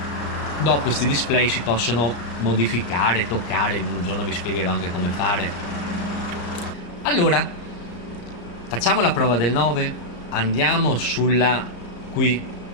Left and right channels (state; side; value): late; right; 34 ms